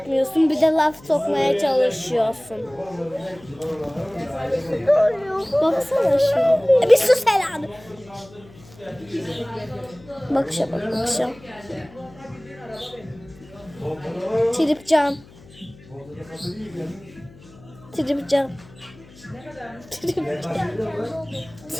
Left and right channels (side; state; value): left; noise; hum, 23 dB below the sound